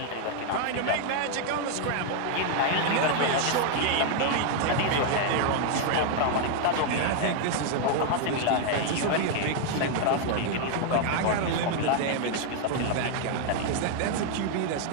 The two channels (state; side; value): different; both; correlation 0.00